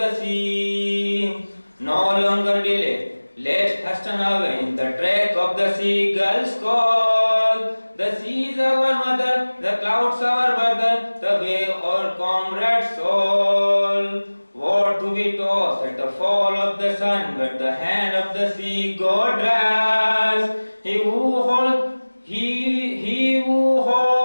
sea. No longer delay, let's hasten away in the track of the seagull's call. The sea is our mother, the clouds our brother, the wave our comrade's soul. What do we toss at the fall of the sun, but the hand of the sea God drives? He who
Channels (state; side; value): inverted; both; correlation -1.00